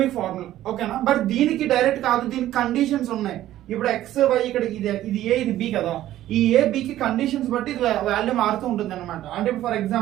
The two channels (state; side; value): quieter; left; 13.6 dB